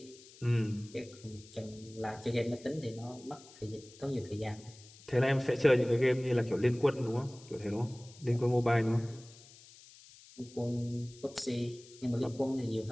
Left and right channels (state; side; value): noise; left; hiss, 21 dB below the sound